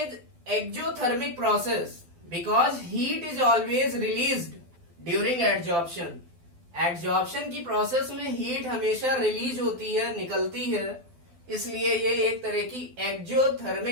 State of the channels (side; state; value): left; late; 12 ms